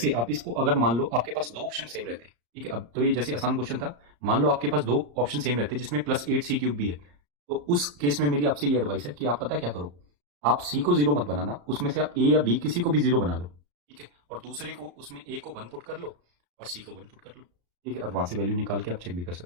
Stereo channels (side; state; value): left; late; 34 ms